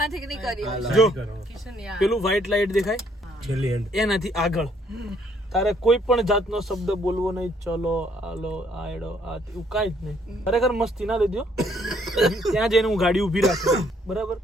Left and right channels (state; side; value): normal; both; correlation 0.67